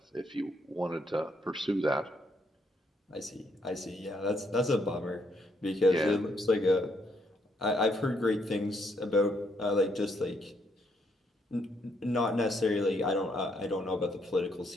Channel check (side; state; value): both; normal; correlation 0.73